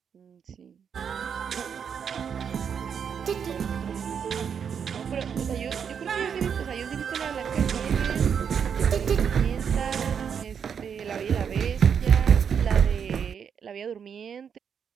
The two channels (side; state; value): left; quieter; 7.3 dB